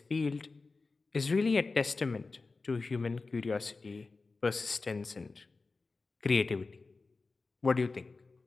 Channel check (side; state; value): right; quieter; 3.9 dB